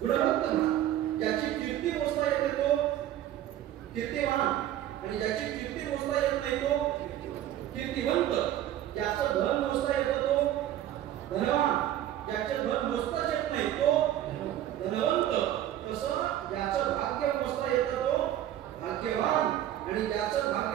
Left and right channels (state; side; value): quieter; left; 12.3 dB